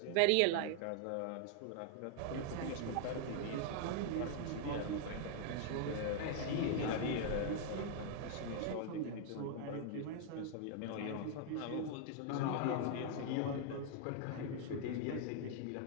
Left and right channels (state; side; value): different; both; correlation 0.00